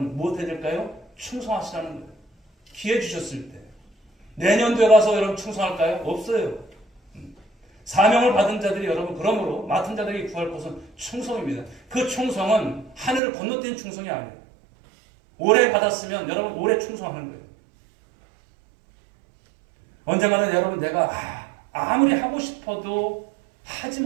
무엇해야 될까요? 충성하시라는 거예요. 기회 주셨을 때. 내년도에 가서 여러분 충성할까요? 없어요. 사명을 받은 자들이 여러분 그러므로 맡은 자들에게 구할 것은 충성입니다. 그 충성은 하늘을 건너뛴 충성이 아니에요. 오래 받았으면 여러분 오래 충성하는 거예요. 언젠가는 여러분 내가 아무리 하고 싶어도 하지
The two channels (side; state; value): left; drops out; at 13.2 s